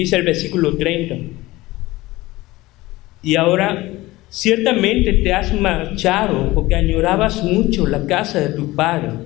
el versículo 30. Y ahora, ciertamente te has marchado porque añorabas mucho la casa de tu padre.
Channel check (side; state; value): right; quieter; 19.2 dB